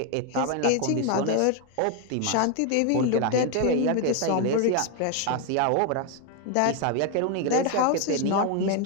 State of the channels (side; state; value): both; different; correlation 0.01